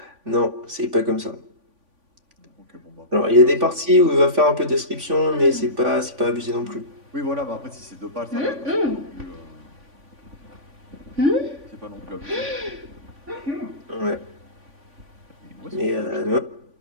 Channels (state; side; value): late; left; 3.5 ms